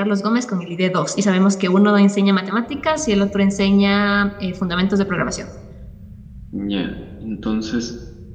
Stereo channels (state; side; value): identical; both; correlation 1.00